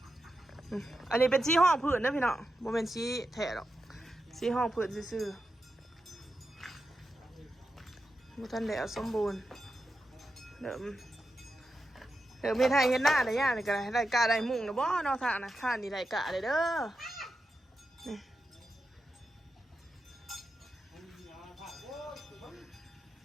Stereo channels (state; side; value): normal; both; correlation 0.89